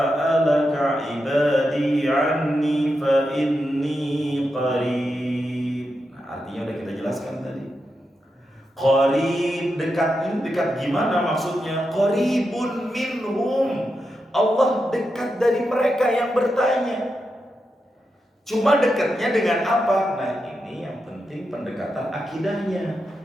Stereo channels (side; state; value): both; normal; correlation 0.87